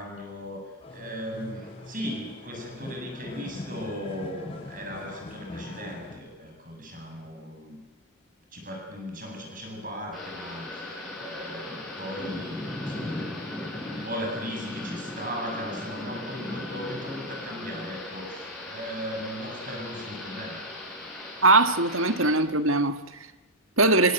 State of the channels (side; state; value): both; normal; correlation -0.02